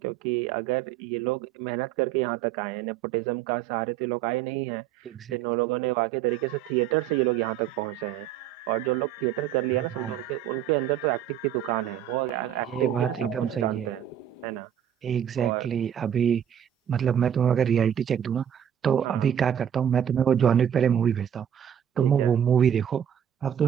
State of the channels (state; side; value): quieter; left; 9.6 dB